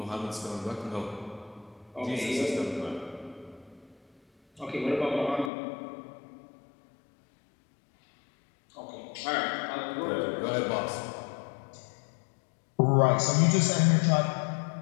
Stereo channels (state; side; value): drops out; right; at 5.5 s